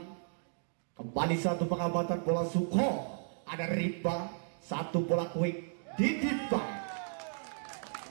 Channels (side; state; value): left; silent; digital silence